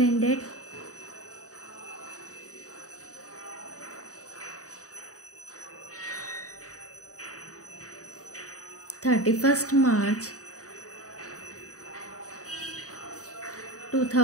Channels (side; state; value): right; late; 0.66 ms